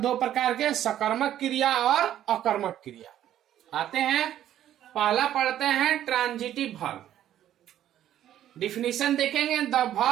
दो प्रकार के, सकर्मक क्रिया और अकर्मक क्रिया। आते हैं, पहला पढ़ते हैं ट्रांजिटिव वर्ब। डिफिनीशन देखेंगे, the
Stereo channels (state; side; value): quieter; left; 11.7 dB